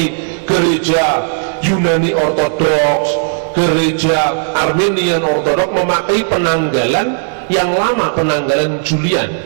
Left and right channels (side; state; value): left; silent; digital silence